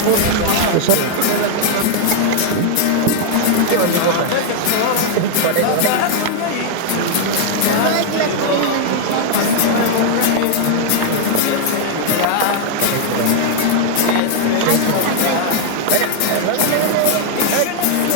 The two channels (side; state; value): both; different; correlation 0.00